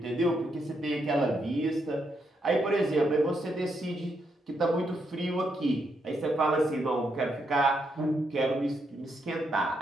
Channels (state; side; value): normal; both; correlation 0.79